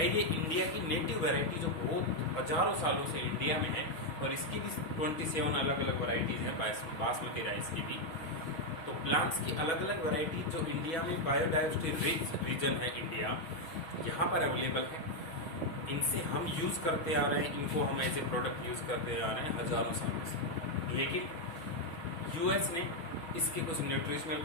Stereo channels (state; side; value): late; right; 6.2 ms